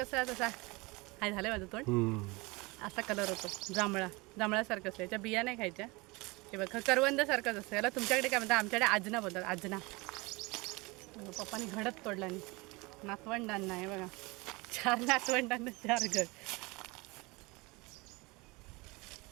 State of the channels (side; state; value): left; quieter; 24.8 dB